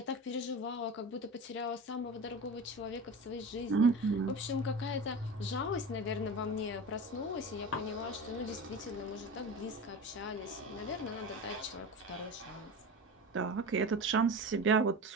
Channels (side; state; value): both; normal; correlation 0.30